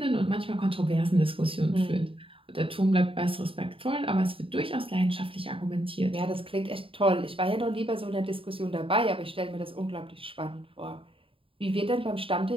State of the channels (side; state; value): left; late; 0.26 ms